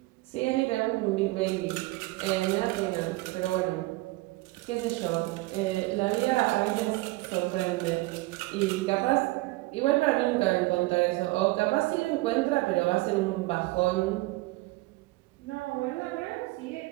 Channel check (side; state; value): left; quieter; 21.4 dB